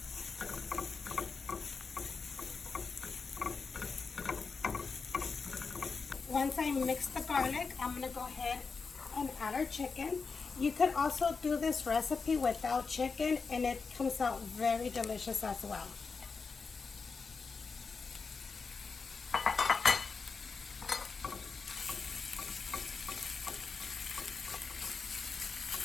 Once I mix the garlic, I'm gonna go ahead and add our chicken. You could also do this recipe without chicken and it comes out very delicious as well.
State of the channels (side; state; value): right; quieter; 4.9 dB